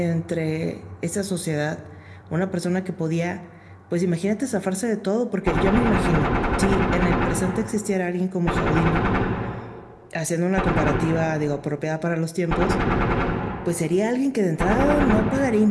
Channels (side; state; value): both; identical; correlation 1.00